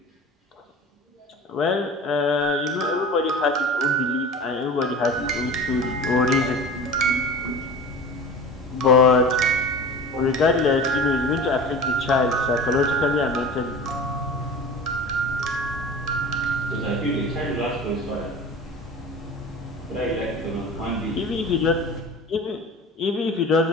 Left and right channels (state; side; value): normal; both; correlation 0.37